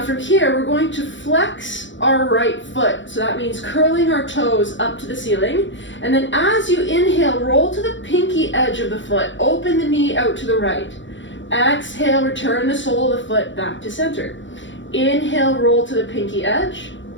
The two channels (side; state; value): right; late; 0.54 ms